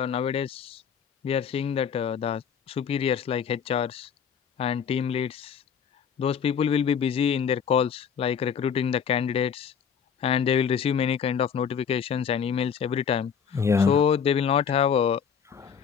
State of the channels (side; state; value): right; quieter; 7.3 dB